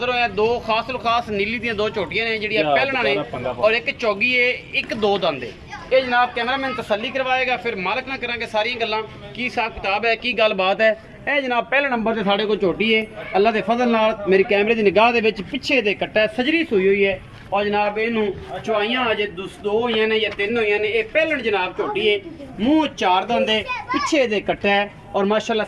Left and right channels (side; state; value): both; identical; correlation 1.00